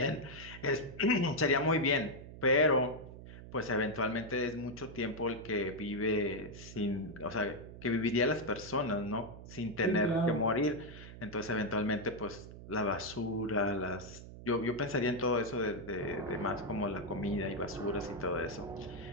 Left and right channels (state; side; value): noise; right; hum, 14 dB below the sound